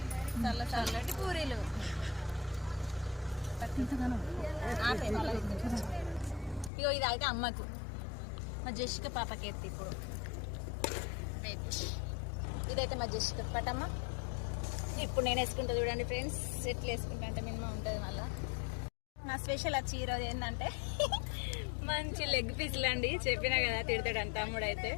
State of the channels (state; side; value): drops out; right; at 6.7 s